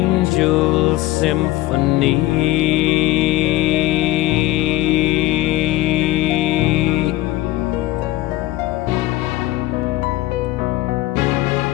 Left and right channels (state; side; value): quieter; right; 16.6 dB